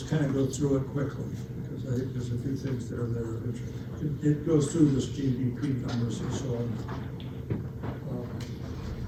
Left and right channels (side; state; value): both; identical; correlation 1.00